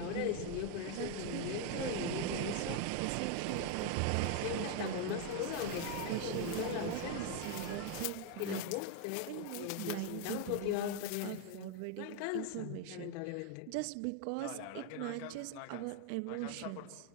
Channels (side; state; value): both; different; correlation 0.01